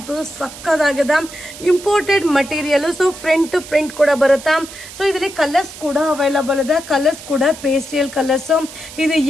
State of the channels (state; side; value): noise; right; hiss, 15 dB below the sound